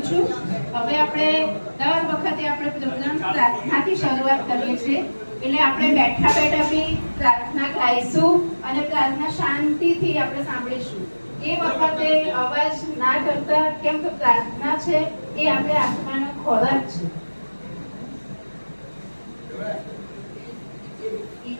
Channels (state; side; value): inverted; both; correlation -1.00